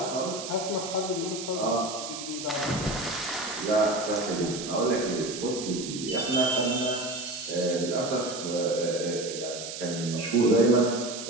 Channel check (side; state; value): right; noise; hiss, 8 dB below the sound